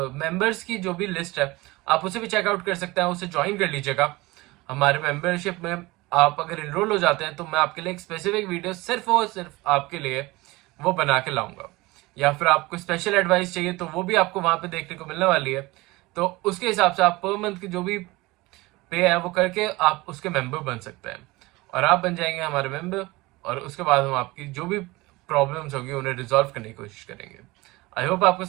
मेंबर्स की जो भी लिस्ट है आप उसे भी चेकआउट कर सकते हैं, उसे ज्वाइन कर लीजिएगा। हमारे मेंबरशिप में आप अगर इनरोल हो जाते हैं तो मैं आपके लिए एक स्पेसिफिक वीडियो सिर्फ और सिर्फ आपके लिए वो बना के लाऊंगा। या फिर आपको स्पेशल एडवाइस चाहिए तो वो भी आपको वहां पे देखने को मिलने वाली है। तो उसके हिसाब से आप पर मंथ की जो भी पे है वो करके आप उसके मेंबर बन सकते हैं और आप बन जाएंगे हमारे मेंबर। और उसके बाद हम आपकी जो भी प्रॉब्लम्स होगी उन्हें रिजॉल्व करने की कोशिश करेंगे। आई होप आपको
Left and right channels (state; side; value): quieter; left; 21.5 dB